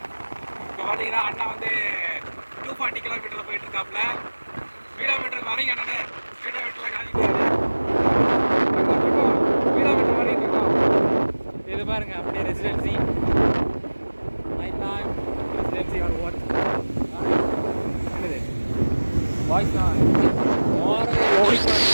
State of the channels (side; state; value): both; inverted; correlation -1.00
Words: இப்போ பார்த்தீங்கன்னா அண்ணா வந்து 240 கிலோமீட்டரில் போயிட்டு இருக்காப்புல. கிலோமீட்டருக்கு வரீங்க அண்ணே, கிலோமீட்டரில் காமிக்கிறாரு. கிலோமீட்டர் வரைக்கும் இருக்கோம். இது பாருங்க அப்படியே residency, night time residency or what என்னது வாய்ஸ் தான்